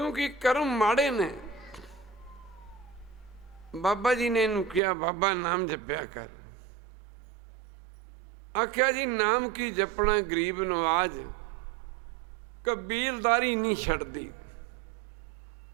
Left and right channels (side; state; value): left; drops out; at 4.8 s